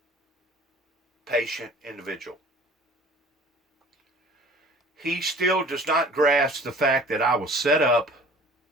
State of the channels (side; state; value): both; normal; correlation 0.47